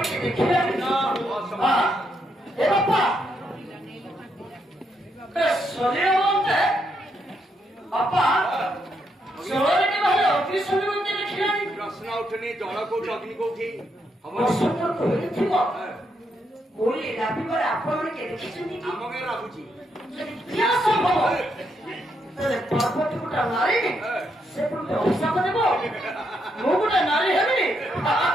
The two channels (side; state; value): both; normal; correlation 0.78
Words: ପ୍ରଶ୍ନ ଉଠୁନି ଜଳ କୋଉଠି ଅଗ୍ନି କୋଉଠି ଆପଣ ଦେଖିଛନ୍ତି ଆମ ଗାଁ ଲାଗୁଛି ପର୍ବତୀ ଗୋଟେ ନାରୀ ସେ ଗୋଟେ ଅଭିଶାପ ଦେବ ମୁଁ ଗୋଟେ ନାରୀ ହେବି